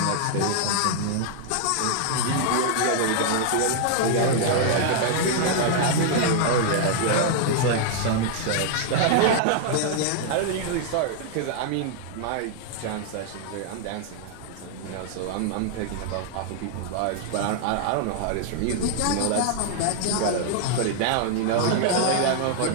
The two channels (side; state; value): both; different; correlation -0.01